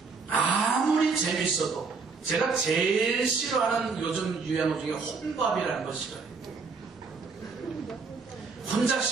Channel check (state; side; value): quieter; left; 4.8 dB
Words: 아무리 재밌어도 제가 제일 싫어하는 요즘 유행어 중에 혼밥이라는 거 싫어해요. 혼자